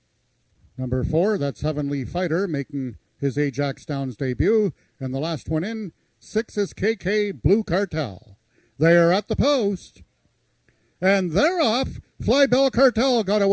Number 4, that's Heavenly Fighter, making his Ajax Downs debut. And the last one in, 6 is KK Blue Cartel. They are at the post. And they're off. Fly Bell Cartel got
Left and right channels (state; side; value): identical; both; correlation 1.00